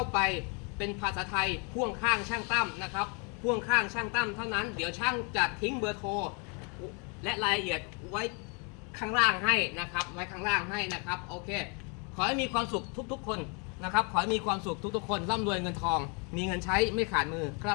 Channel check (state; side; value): quieter; right; 34.8 dB